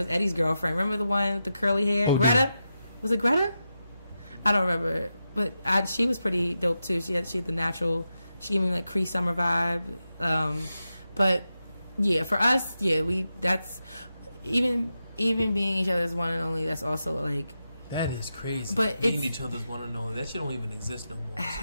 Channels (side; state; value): both; inverted; correlation -0.89